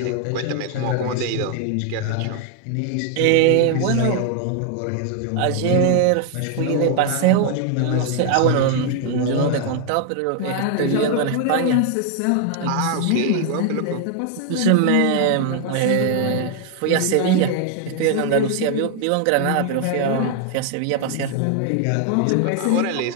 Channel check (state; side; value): different; both; correlation 0.00